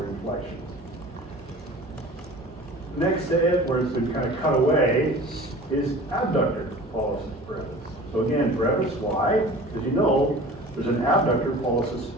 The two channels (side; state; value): both; normal; correlation 0.41